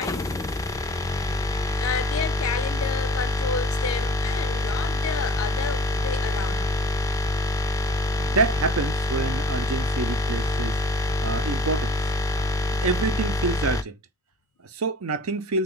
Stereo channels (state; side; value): normal; both; correlation 0.47